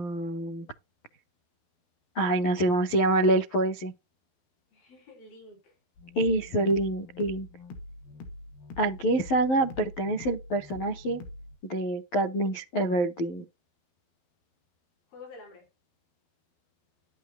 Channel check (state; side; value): late; right; 12 ms